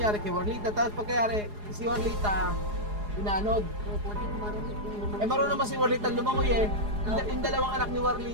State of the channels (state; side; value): late; left; 4.8 ms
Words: kay Warlita. Tapos pagkayari, si Warlita, inaanod. Opo, di ko marunong naman. Eh, marunong naman si Warlita lumangoy eh. Yung dalawang anak ni